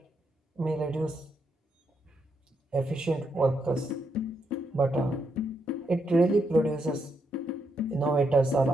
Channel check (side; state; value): both; normal; correlation 0.79